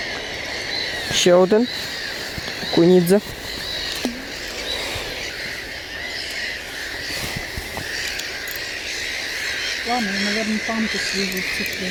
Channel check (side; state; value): both; identical; correlation 1.00